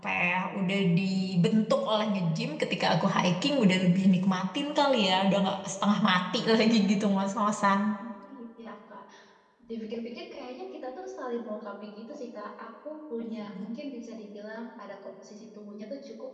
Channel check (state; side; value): identical; both; correlation 1.00